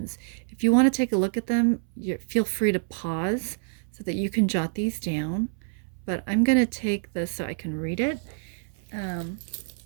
If you want to take a look at them, feel free to pause so that you can jot these down. But I'm going to take this so I can read it.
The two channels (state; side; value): silent; left; 60 dB below the other